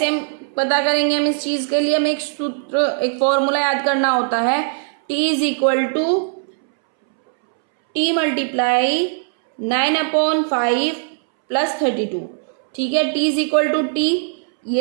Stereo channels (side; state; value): left; silent; 66 dB below the other